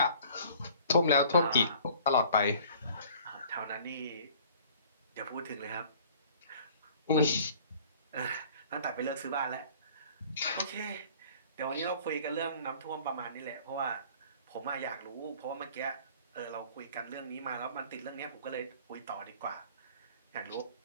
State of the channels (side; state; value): both; inverted; correlation -0.51